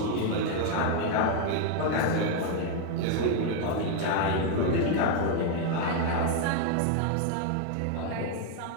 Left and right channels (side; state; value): both; different; correlation 0.00